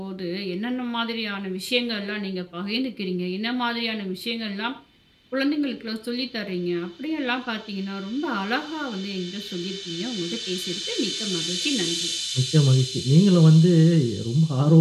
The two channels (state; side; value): identical; both; correlation 1.00